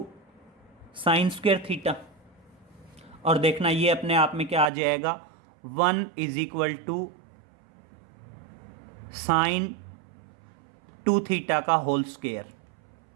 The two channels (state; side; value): drops out; left; at 4.7 s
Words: sine square theta. और देखना ये अपने आप में क्या आ जाएगा, 1 is equal to sine 2 theta का होल स्क्वायर।